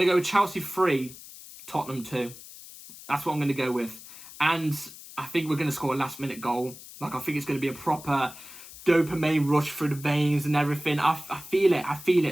to go with Chelsea 3, Tottenham 2. That's what I'm going to go with. And I think we're going to score a last-minute goal. Like, I think it's going to be a proper dopamine rush through the veins and everything. I feel it. I feel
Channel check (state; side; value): noise; left; hiss, 16 dB below the sound